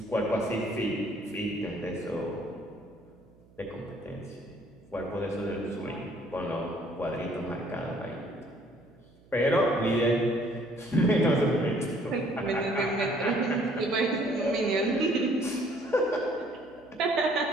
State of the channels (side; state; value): right; noise; hum, 27 dB below the sound